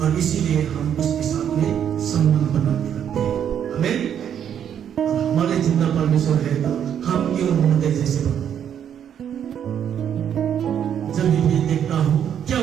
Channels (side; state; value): left; quieter; 9.0 dB